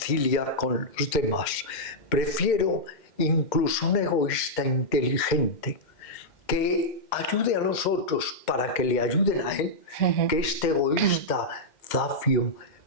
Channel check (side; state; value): right; late; 2.1 ms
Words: con los demás. Prefiero incluso un egoísta inteligente que ayude a los otros para que le ayuden a él, que este egoísta zafio,